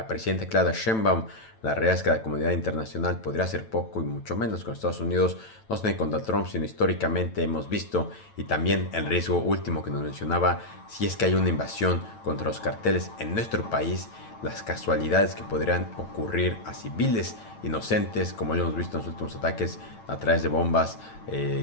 presidenta Claudia Sheinbaum. La realidad es que la comunidad internacional podría hacer poco y mucho menos con Estados Unidos, no solo contra Trump, sino históricamente hemos visto, y también el riesgo último que nos mencionaba, si es que hay una invasión contra los carteles en nuestro país, las casualidades que podrían ocurrir a civiles inocentes, como ya hemos visto en los últimos ataques a través de bombas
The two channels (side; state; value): right; late; 9.0 ms